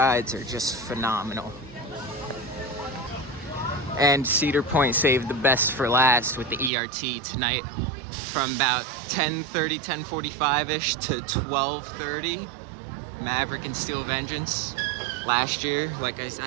are just phenomenal. And Cedar Point saved the best for last with the ERT tonight. From about 10:30, 10:45-ish to 12:30, Maverick and Steel Vengeance. Last year, like I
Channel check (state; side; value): drops out; left; at 6.7 s